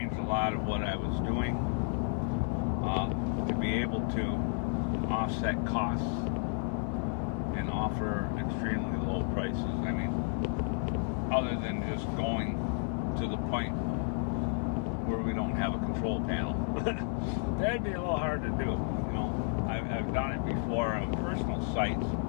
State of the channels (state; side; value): silent; right; 56 dB below the other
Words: a lot of what I was doing to be able to offset costs and offer extremely low prices. I mean, other than just going to the point where we don't have a control panel. That'd be a little hard to do. I've done it before on personal sites